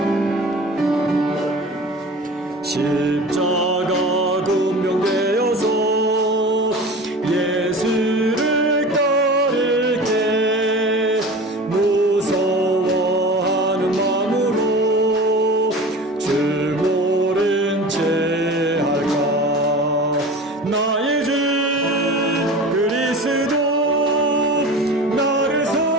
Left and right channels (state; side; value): normal; both; correlation 0.36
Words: 십자가 군병되어서 예수를 따를 때 무서워하는 마음으로 줄 모른 채 할까. 나의 주 그리스도 나를